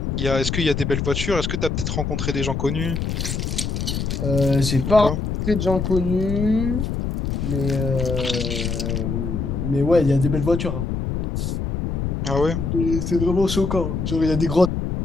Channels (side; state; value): left; noise; rumble, 2 dB below the sound